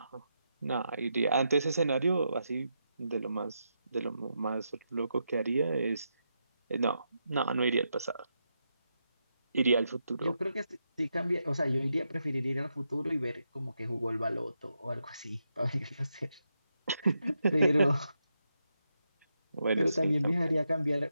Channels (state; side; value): inverted; both; correlation -0.84